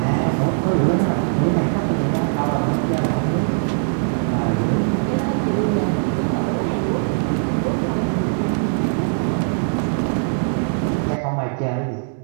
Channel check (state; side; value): silent; left; 65 dB below the other